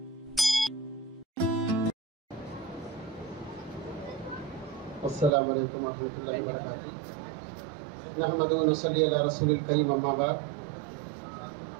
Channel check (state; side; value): drops out; left; at 5.3 s